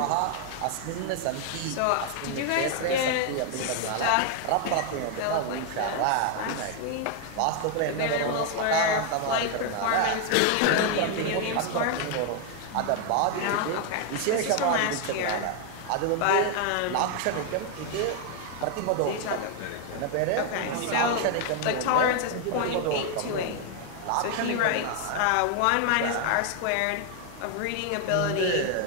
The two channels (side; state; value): both; different; correlation 0.00